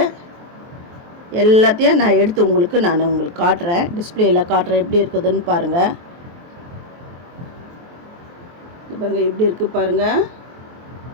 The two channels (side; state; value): left; late; 23 ms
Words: எல்லாத்தையும் நான் எடுத்து உங்களுக்கு காட்டுறேன். டிஸ்பிளேயில் காட்டுறேன் எப்படி இருக்குதுன்னு பாருங்கள். இது பாருங்கள் எப்படி இருக்குது பாருங்கள்.